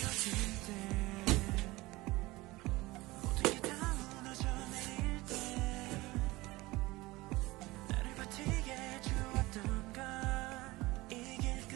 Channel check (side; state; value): left; quieter; 20.5 dB